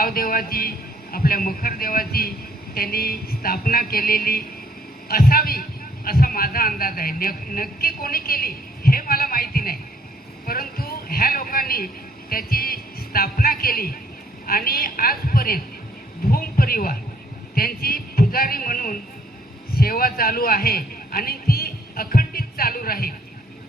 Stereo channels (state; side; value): normal; both; correlation 0.65